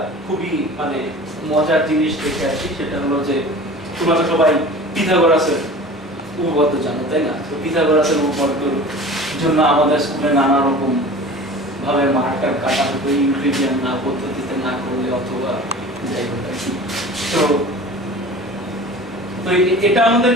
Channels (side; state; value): both; normal; correlation 0.40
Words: খুবই মানে মজার জিনিস দেখে আসি। সেটা হলো যে তোমরা তো সবাই পিথাগোরাসের উপপাদ্য জানো, তাই না? তো পিথাগোরাসের উপপাদ্যর জন্য আমাদের স্কুলে নানা রকম ভাবে মার্কার কাটা হতো ইউক্লিডিয়ান না পদ্ধতিতে না করলে অথবা যাই হোক আর কি। তো এটা আমাদের